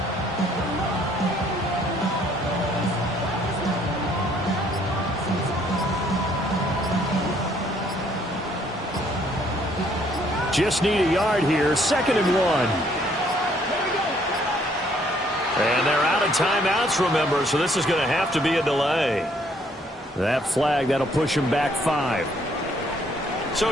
Just need a yard here. 2nd and 1. And they're out of timeouts, remember, so this is going to have to be a delay. That flag, that'll push him back 5.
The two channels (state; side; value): normal; both; correlation 0.65